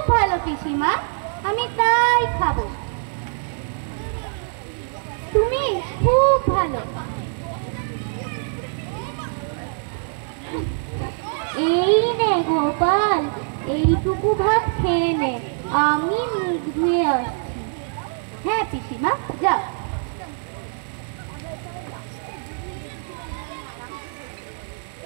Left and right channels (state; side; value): silent; left; 63 dB below the other